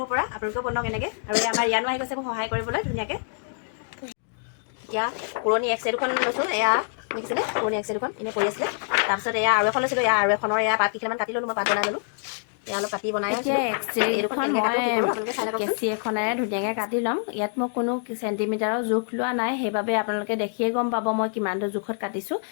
পৰা, আপোনালোকেও বনাওক এনেকৈ। আৰু আমাৰ ইয়ানো আহি গৈছে মোক সহায় কৰিবলৈ ধুনীয়াকৈ। এতিয়া পুৰণি এক্সে দুখন লৈছোঁ, এয়া দেখিছিলে পুৰণি এক্সে দুখন এনেই পৰি আছিলে। তাৰপিছত এয়া আৰু এখন লৈছিলোঁ, এয়া আৰু এখনৰ এয়া পাত কেইটামান কাটি ল'লোঁ, মই পাত বনাই ল'লোঁ। এয়া অলপ কাটি বনাই এতিয়া এক্সৰেখন মই কেঁচি এখনেৰে ধুনীয়াকৈ কাটি ল'ম। ইয়াত মই কোনো চেণ্টিমিটাৰৰ জোখ লোৱা নাই, সেইবাবে আপোনালোকে দেখিয়ে গম পাব মই কিমানটো জোখত কাটিছোঁ।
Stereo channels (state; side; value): silent; right; digital silence